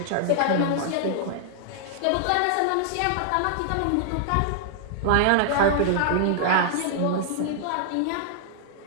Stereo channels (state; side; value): different; both; correlation -0.01